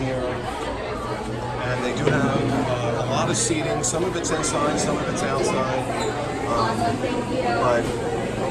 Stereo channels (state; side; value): identical; both; correlation 1.00